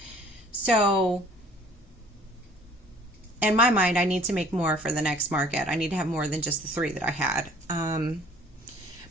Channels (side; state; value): both; normal; correlation 0.53